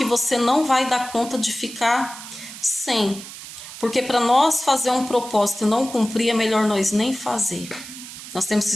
você não vai dar conta de ficar sem. Porque para nós fazer um propósito e não cumprir, é melhor nós nem fazer. Nós temos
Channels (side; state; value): right; noise; hiss, 13 dB below the sound